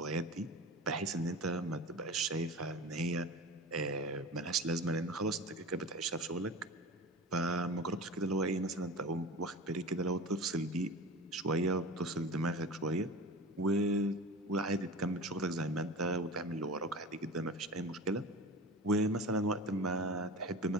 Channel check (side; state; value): both; normal; correlation 0.33